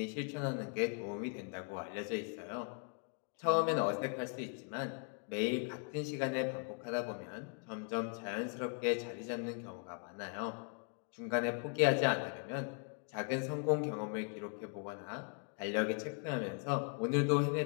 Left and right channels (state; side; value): quieter; right; 39.1 dB